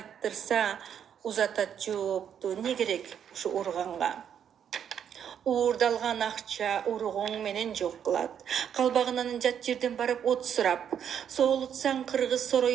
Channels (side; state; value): left; quieter; 8.6 dB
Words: узатат жоопту не керек ушу урганга. Уурдалган акча ургуң менен жок кылат. Калбагынан жат жерден барып от сурап, соолутсаң кыргыз